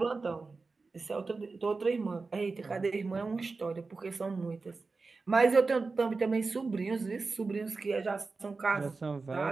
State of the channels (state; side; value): quieter; left; 4.1 dB